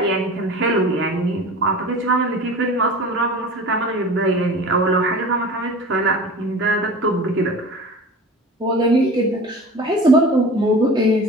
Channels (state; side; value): normal; both; correlation 0.37